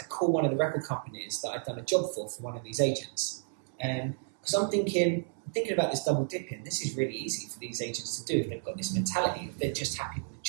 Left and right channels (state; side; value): silent; left; 57 dB below the other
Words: I called one of the record companies that I'd done a job for one of these agents. Because I'm thinking about this double dipping. This is really easy for these agents to do if they've got this mentality, if they're just happy with the